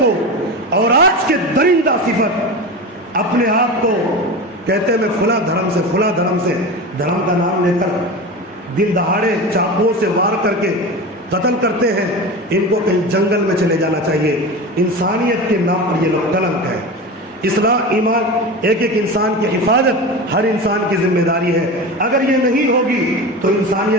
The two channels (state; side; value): normal; both; correlation 0.27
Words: اور آج کے درندہ صفت اپنے آپ کو کہتے ہیں میں فلاں دھرم سے، فلاں دھرم سے، دھرم کا نام لے کر دن دہاڑے چاقوؤں سے وار کر کے قتل کرتے ہیں۔ ان کو کہیں جنگل میں چلے جانا چاہیے۔ انسانیت کے نام پر یہ لوگ کلنک ہے۔ اصلاح ایمان، ایک ایک انسان کی حفاظت ہر انسان کی ذمہ داری ہے۔ اگر یہ نہیں ہوگی تو